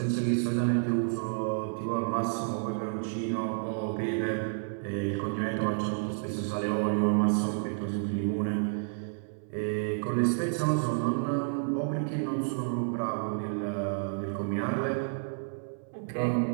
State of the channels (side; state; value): left; silent; 58 dB below the other